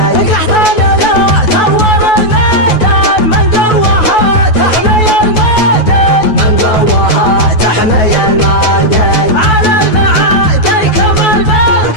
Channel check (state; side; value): late; right; 9.3 ms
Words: قحطان لا ثور الميدان من قوها تحمي الميدان من قوها تحمي الميدان على